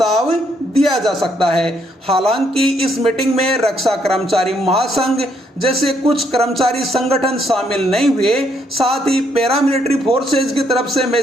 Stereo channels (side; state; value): both; normal; correlation 0.72